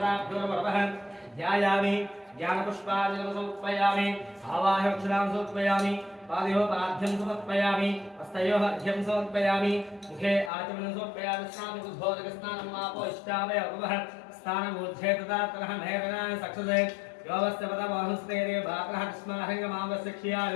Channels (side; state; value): right; drops out; at 10.5 s